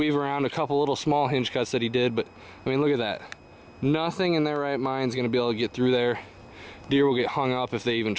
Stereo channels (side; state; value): both; identical; correlation 1.00